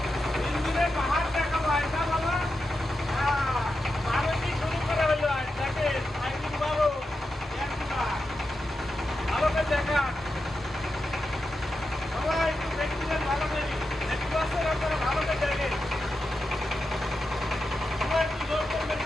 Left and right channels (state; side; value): normal; both; correlation 0.89